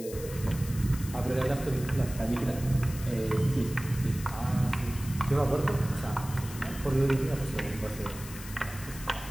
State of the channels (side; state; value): left; noise; hiss, 14 dB below the sound